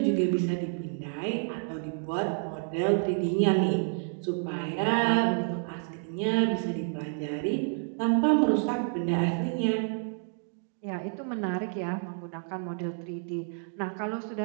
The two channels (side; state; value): left; silent; 58 dB below the other